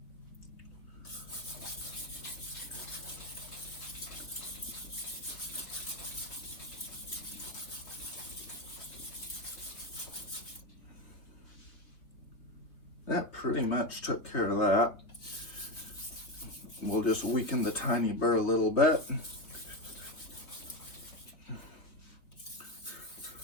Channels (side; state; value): right; late; 3.6 ms